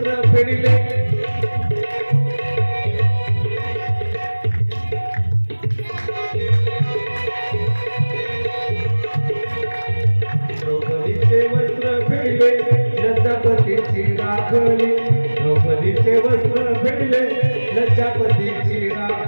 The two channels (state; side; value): inverted; both; correlation -1.00